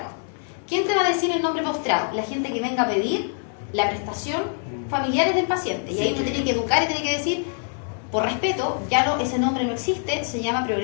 ¿Quién te va a decir el nombre postrado? La gente que venga a pedir la prestación, familiares del paciente. Y ahí uno tiene que educar y tiene que decir, Por respeto, ya no, ese nombre no existe, se llama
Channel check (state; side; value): silent; right; 58 dB below the other